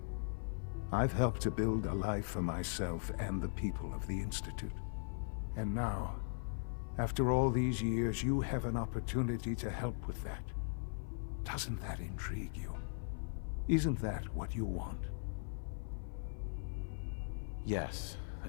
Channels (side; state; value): right; silent; 52 dB below the other